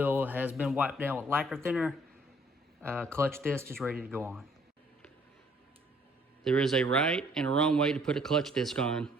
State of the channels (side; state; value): both; normal; correlation 0.62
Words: has been wiped down with lacquer thinner. Clutch disc is ready to go on. There is a right and a wrong way to put a clutch disc on.